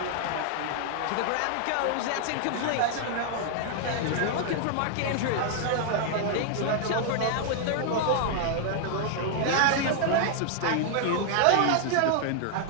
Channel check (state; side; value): different; both; correlation 0.00